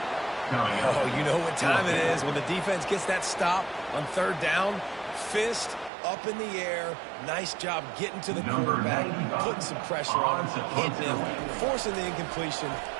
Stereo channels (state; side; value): drops out; left; at 5.9 s